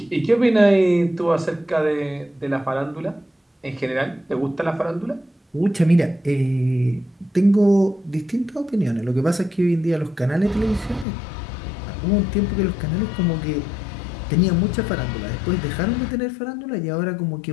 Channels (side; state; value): right; drops out; at 11.1 s